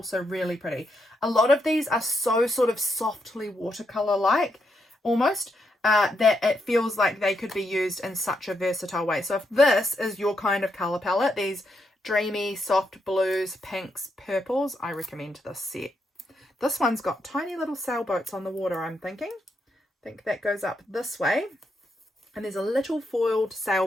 really pretty. A lot of these are so sort of softly watercolour like almost, that it feels like they could be used in such a versatile way. So if this is your kind of colour palette, these dreamy soft blues, pinks, purples, I recommend this set. This one's got tiny little sailboats on the water, I'm thinking. I think that goes up this way, and there's a little foiled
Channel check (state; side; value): normal; both; correlation 0.80